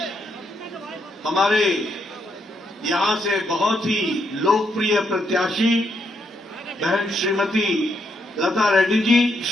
हमारे यहां से बहुत ही लोकप्रिय प्रत्याशी बहन श्रीमती लता रेड्डी जी,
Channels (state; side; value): normal; both; correlation 0.77